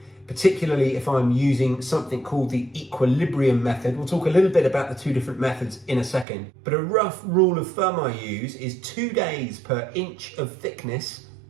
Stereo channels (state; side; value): drops out; left; at 6.2 s